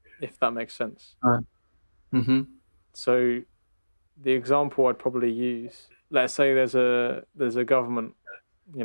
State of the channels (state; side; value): inverted; both; correlation -1.00